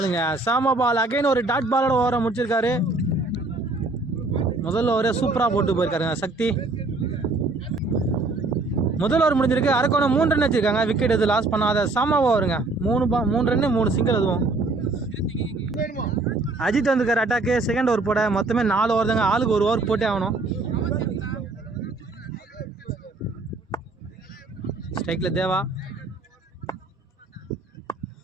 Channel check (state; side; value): quieter; left; 3.3 dB